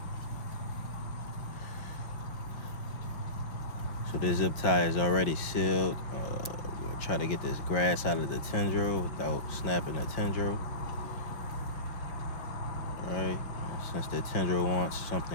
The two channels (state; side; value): late; right; 5.5 ms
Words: So the zip tie is already sealed. We'll try to get this grass out of the tendril without snapping the tendril. Alright, since the tendril wants